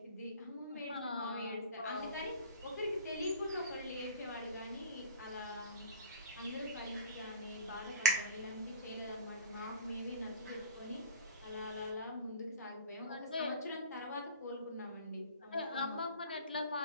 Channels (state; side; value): inverted; both; correlation -0.39